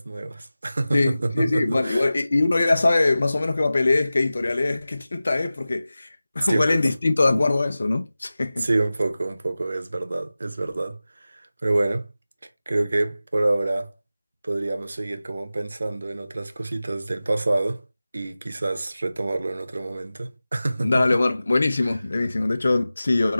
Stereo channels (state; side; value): inverted; both; correlation -0.96